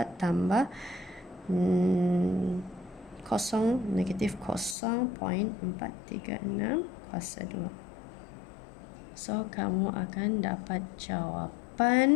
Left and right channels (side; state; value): right; drops out; at 4.8 s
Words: tambah 0 negatif 0.436 kuasa 2. So, kamu akan dapat